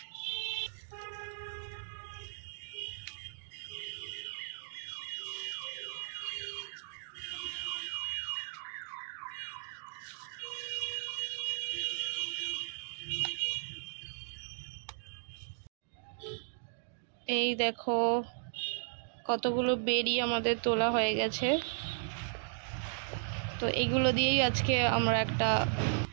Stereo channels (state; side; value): silent; left; digital silence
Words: এই দেখো কতগুলো বেরি আমাদের তোলা হয়ে গেছে। তো এইগুলো দিয়েই আজকে আমরা একটা